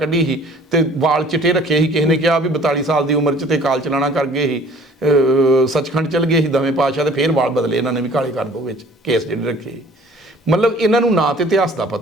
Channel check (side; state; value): both; normal; correlation 0.51